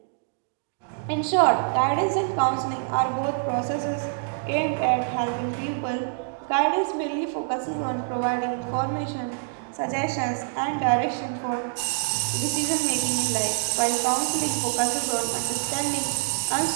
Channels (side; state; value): left; silent; digital silence